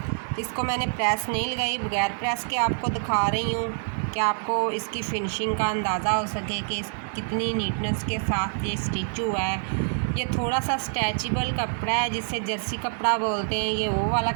इसको मैंने प्रेस नहीं लगाई, बगैर प्रेस के आपको दिखा रही हूँ कि आपको इसकी फिनिशिंग का अंदाज़ा हो सके कि कितनी नीटनेस के साथ ये स्टिच हुआ है। ये थोड़ा सा स्ट्रेचेबल कपड़ा है जिसे जर्सी कपड़ा बोलते हैं, ये वो वाला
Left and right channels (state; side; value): silent; left; digital silence